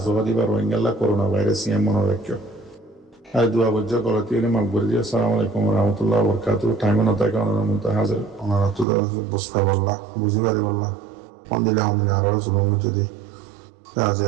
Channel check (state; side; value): drops out; left; at 8.8 s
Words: জবা দিবার রোহিঙ্গাল্লা করোনা ভাইরাস ইয়ে মনে রাখিও আর দুয়া বজ্জা গলতি হলে মাকবর দিয়ে আসসালামু আলাইকুম রহমতুল্লাহ বরকাত টাইমে না থাকে ওনার মধ্যে হাজার ওনারা তো বুঝতে পারলা বুঝি পারি বললা ফোন দিলে আমাদের আরো জুলুম যদি